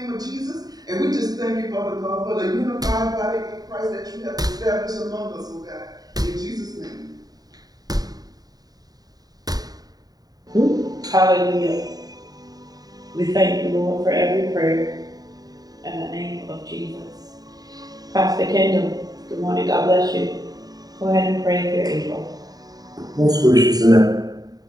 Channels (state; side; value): late; left; 0.18 ms